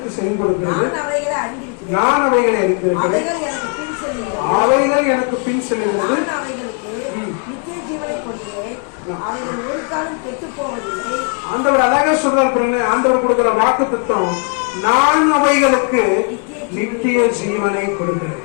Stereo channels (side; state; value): right; quieter; 36.4 dB